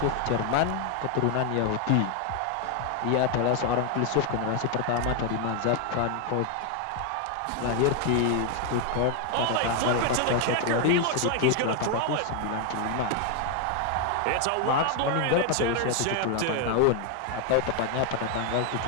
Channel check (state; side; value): different; both; correlation 0.01